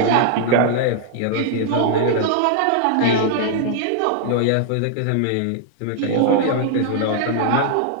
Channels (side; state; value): both; different; correlation -0.01